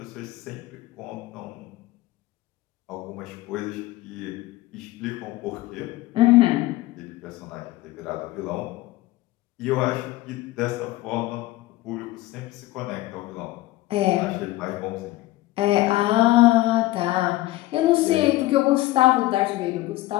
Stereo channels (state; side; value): quieter; right; 17.8 dB